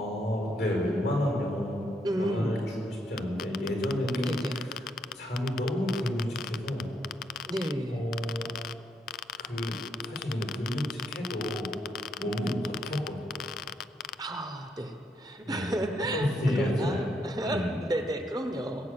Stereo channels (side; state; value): both; normal; correlation 0.76